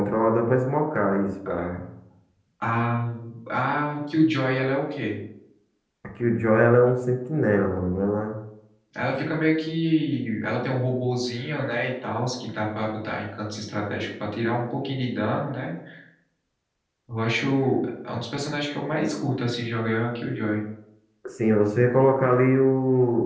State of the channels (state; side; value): identical; both; correlation 1.00